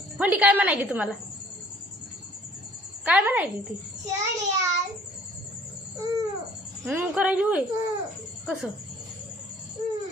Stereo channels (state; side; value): normal; both; correlation 0.55